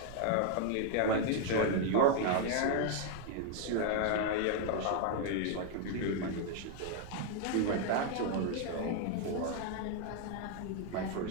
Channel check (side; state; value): both; different; correlation 0.00